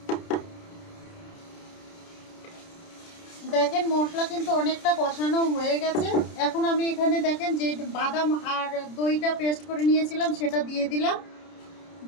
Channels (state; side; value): late; right; 30 ms